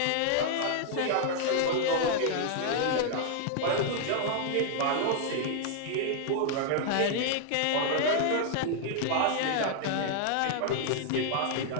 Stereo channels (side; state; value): both; different; correlation -0.01